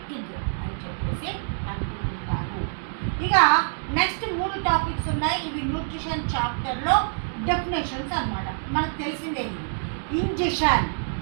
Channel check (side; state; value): left; silent; digital silence